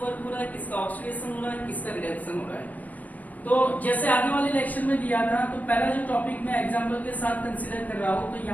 वर्क हो रहा है, किसका ऑक्सीडेशन हो रहा है, किसका रिडक्शन हो रहा है। तो जैसे आगे वाले लेक्चर में दिया था, तो पहला जो टॉपिक मैं एग्जांपल के साथ कंसीडर कर रहा हूं, तो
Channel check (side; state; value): right; late; 0.078 ms